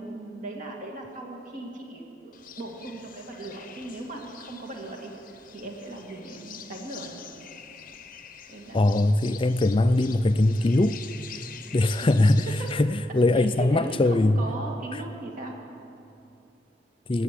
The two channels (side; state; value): both; normal; correlation 0.83